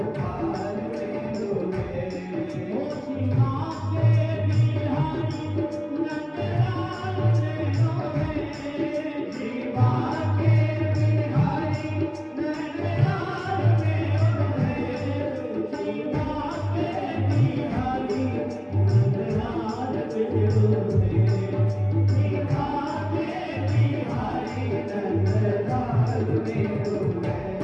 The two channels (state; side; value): identical; both; correlation 1.00